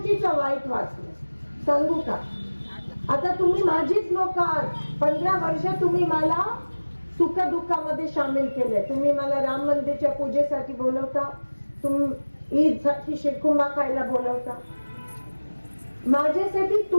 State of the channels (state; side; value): inverted; both; correlation -1.00